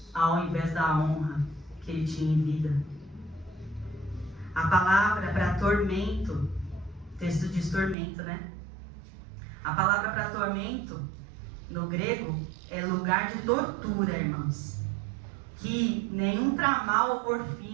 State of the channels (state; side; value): drops out; left; at 8.0 s